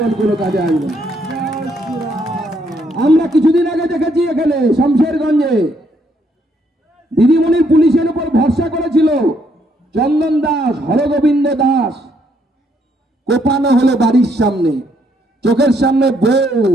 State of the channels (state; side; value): normal; both; correlation 0.72